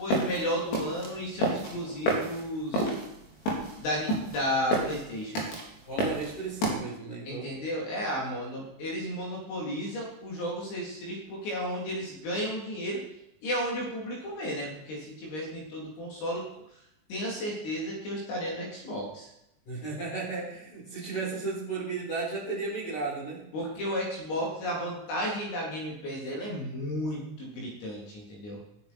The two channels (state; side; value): late; right; 19 ms